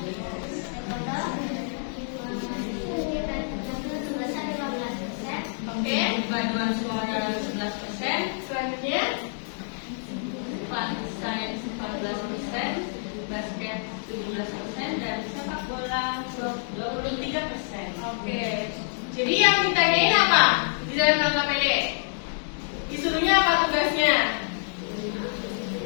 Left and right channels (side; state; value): right; silent; 60 dB below the other